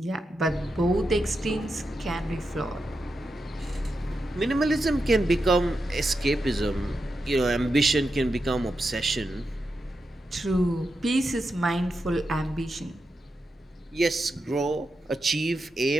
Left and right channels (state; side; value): normal; both; correlation 0.87